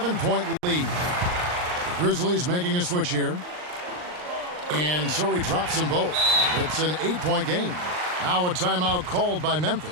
lead. The Grizzlies making a switch here. And so he drops them both. It's an 8-point game. Now a timeout called by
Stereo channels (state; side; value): late; left; 39 ms